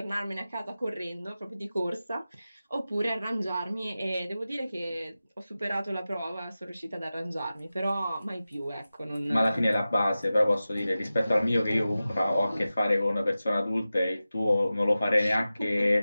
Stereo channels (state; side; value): inverted; both; correlation -0.95